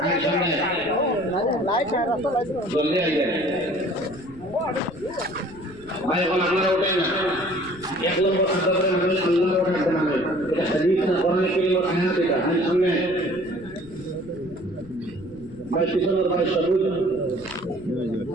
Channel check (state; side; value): noise; left; rumble, 20 dB below the sound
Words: সামনে জলদি আইবেন ভাই। এখন আপনারা ওঠেন না, 1 নম্বর আদবের মানে আল্লাহর ওঠাতে মানে এটা হাদিস না, কোরআনে কারীমের আয়াত। এটা সামনে ভাই, পিছনের ভাই সবুজ